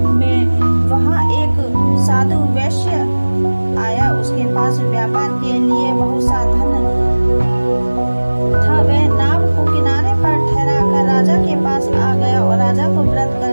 में वहां एक साधु वैश्य आया। उसके पास व्यापार के लिए बहुत सा धन था। वह नाव को किनारे पर ठहरा कर राजा के पास आ गया और राजा को व्रत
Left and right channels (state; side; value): inverted; both; correlation -1.00